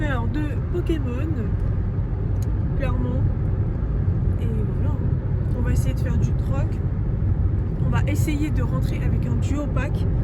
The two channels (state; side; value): identical; both; correlation 1.00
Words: de Pokémon, clairement. Et voilà, on va essayer de faire du troc. On va essayer de rentrer avec un duo pack